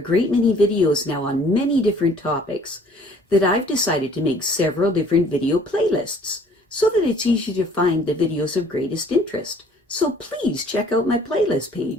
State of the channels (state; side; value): normal; both; correlation 0.56